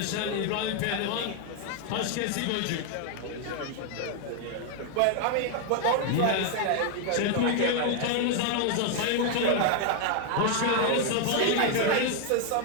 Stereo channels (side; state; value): both; different; correlation 0.00